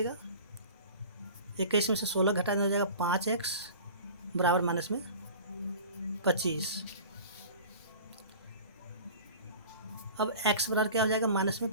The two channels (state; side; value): inverted; both; correlation -0.40